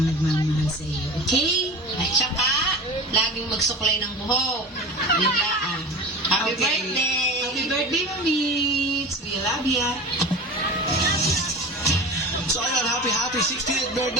nagmamahal sa iyo, okay? At saka, laging magsuklay ng buhok. Yun lang. Happy birthday! Happy birthday, Mamits! We love ya! So ayun, happy 60th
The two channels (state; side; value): normal; both; correlation 0.32